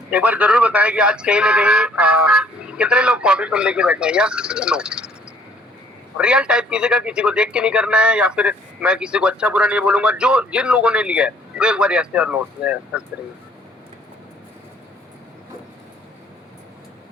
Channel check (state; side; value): normal; both; correlation 0.60